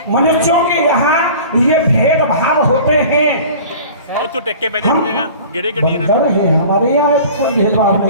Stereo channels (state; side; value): inverted; both; correlation -0.42